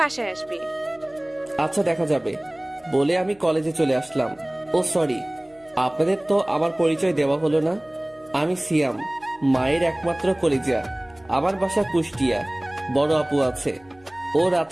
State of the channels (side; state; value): left; noise; hum, 30 dB below the sound